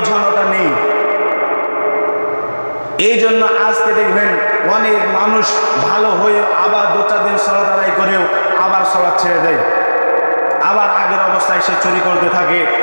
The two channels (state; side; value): inverted; both; correlation -1.00